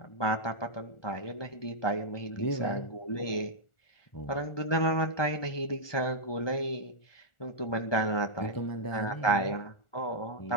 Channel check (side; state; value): right; late; 1.4 ms